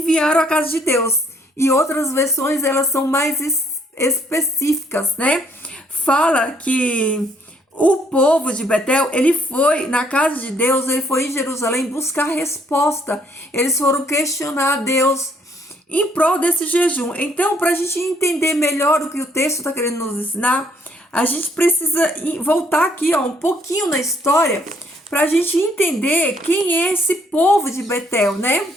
a casa de Deus, e outras versões elas são mais específicas, né? Fala que o povo de Betel, ele foi na casa de Deus, ele foi em Jerusalém buscar resposta, eles foram questionar a Deus em prol desse jejum. Então, para a gente entender melhor o que o texto está querendo nos ensinar, a gente precisa voltar aqui, ó, um pouquinho na história, para a gente entender quem é esse povo de Betel, né?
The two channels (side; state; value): both; normal; correlation 0.66